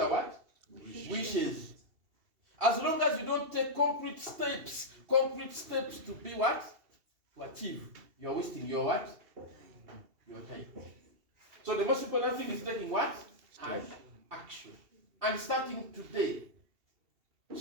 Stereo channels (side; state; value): left; late; 2.7 ms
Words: what? Wishes. As long as you don't take concrete steps to be what? To achieve. You are wasting your what? Your time. So the most important thing is taking what? Action. And starting today.